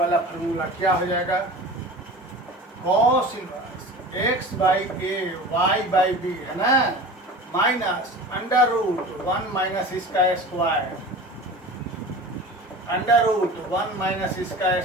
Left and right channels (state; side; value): normal; both; correlation 0.36